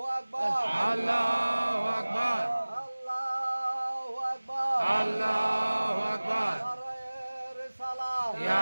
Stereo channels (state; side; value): inverted; both; correlation -1.00